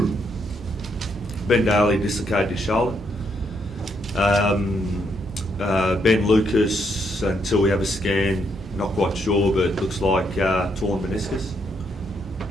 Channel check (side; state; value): both; normal; correlation 0.75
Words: Ben Daly dislocated his shoulder. Ben Lucas, until we have a scan, not quite sure, but it looks like torn meniscus.